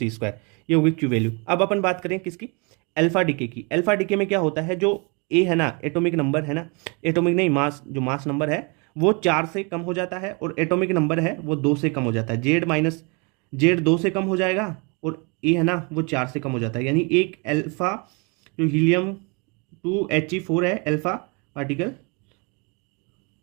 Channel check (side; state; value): left; quieter; 32.0 dB